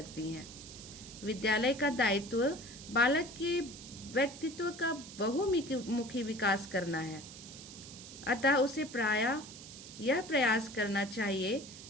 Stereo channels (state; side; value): noise; right; hiss, 14 dB below the sound